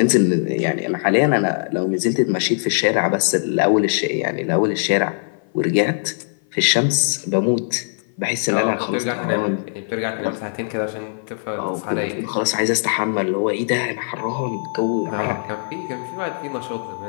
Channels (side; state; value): right; silent; 55 dB below the other